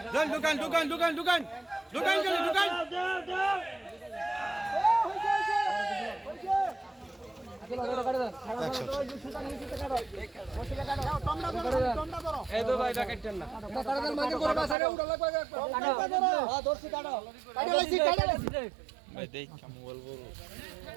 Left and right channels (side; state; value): left; drops out; at 14.8 s